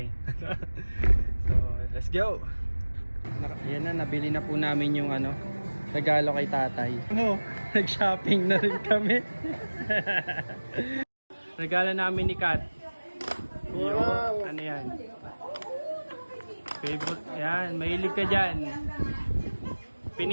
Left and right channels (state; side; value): inverted; both; correlation -1.00